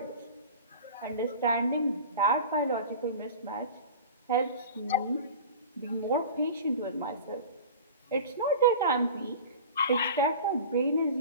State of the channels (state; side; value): inverted; both; correlation -0.36